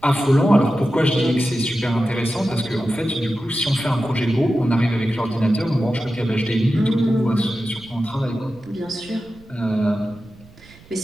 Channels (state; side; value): noise; right; rumble, 24 dB below the sound